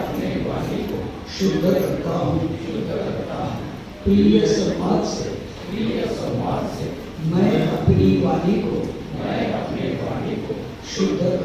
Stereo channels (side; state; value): both; identical; correlation 1.00